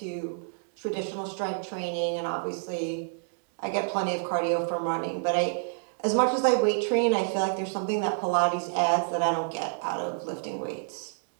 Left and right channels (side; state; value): left; silent; digital silence